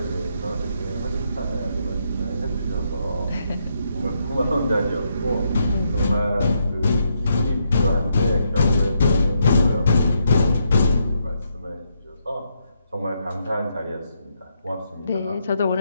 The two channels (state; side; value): inverted; both; correlation -0.78